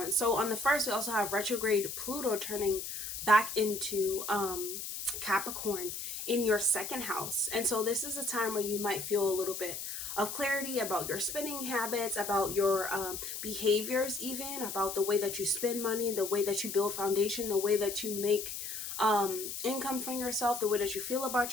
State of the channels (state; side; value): noise; left; hiss, 6 dB below the sound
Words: So on the 1st, we also have retrograde Pluto turning back into Capricorn in your 2nd house. And so this is a time where you might feel a little bit of clarity about your spending habits, about your behaviors, even about the way that you spend money, the way that you build foundation, the way that you make income from yourself, the way that you feel about